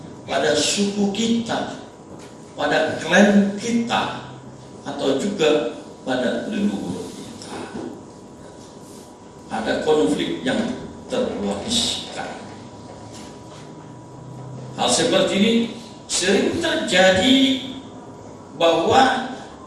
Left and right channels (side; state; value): both; identical; correlation 1.00